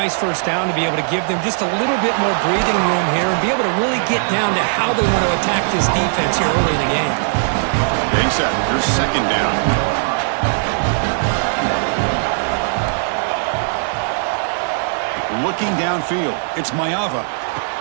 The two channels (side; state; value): left; silent; digital silence